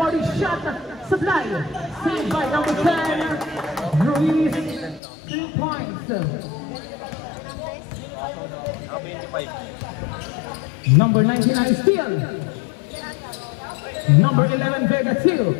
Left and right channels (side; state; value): right; drops out; at 5.0 s